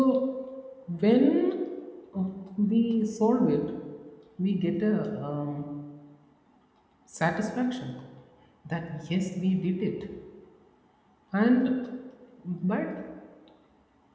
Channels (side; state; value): both; identical; correlation 1.00